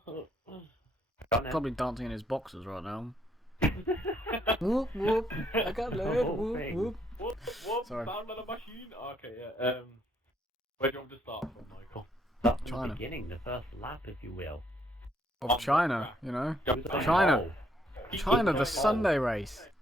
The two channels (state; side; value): normal; both; correlation 0.70